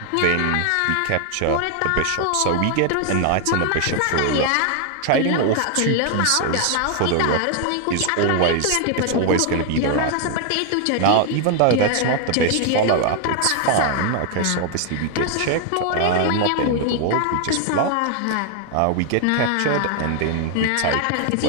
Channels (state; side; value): different; both; correlation 0.00